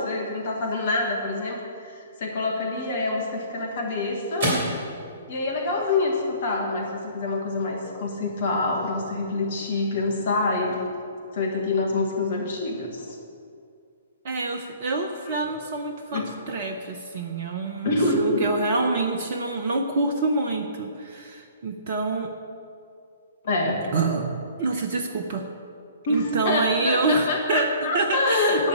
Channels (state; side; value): inverted; both; correlation -0.51